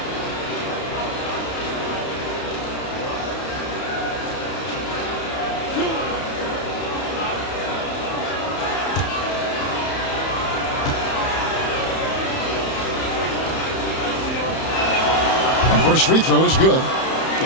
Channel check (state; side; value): late; right; 31 ms